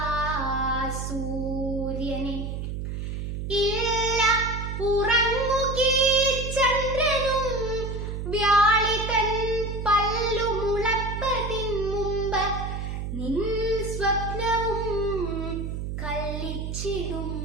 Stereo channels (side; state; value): right; noise; hum, 4 dB below the sound